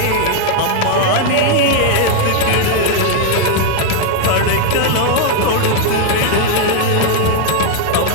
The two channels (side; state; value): both; different; correlation 0.00